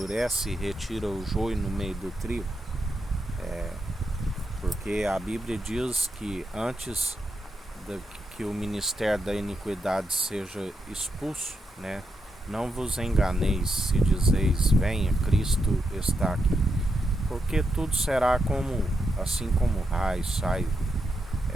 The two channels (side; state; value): both; normal; correlation 0.84